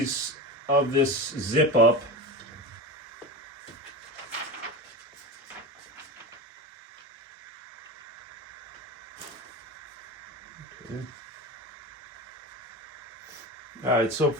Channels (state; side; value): normal; both; correlation 0.26